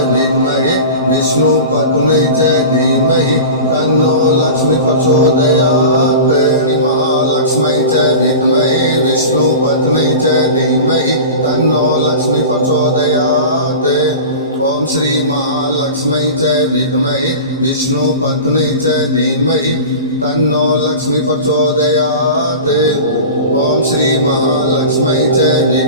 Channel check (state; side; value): inverted; both; correlation -0.33